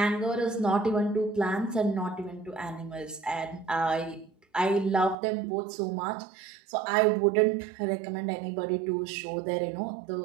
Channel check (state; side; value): drops out; left; at 5.2 s